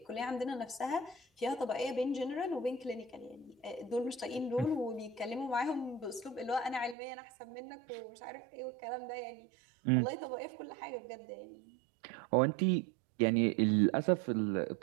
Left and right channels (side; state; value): left; drops out; at 7.0 s